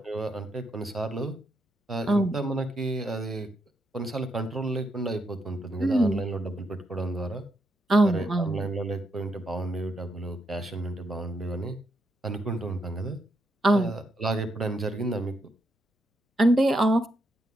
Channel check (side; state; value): both; normal; correlation 0.80